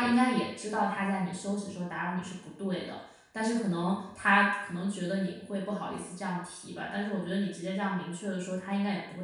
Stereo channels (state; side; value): identical; both; correlation 1.00